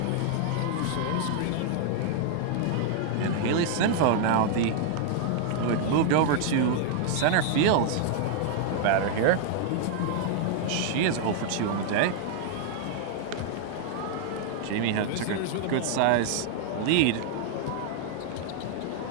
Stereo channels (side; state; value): both; different; correlation -0.01